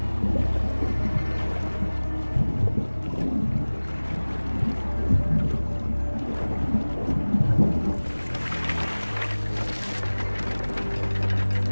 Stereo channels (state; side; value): inverted; both; correlation -1.00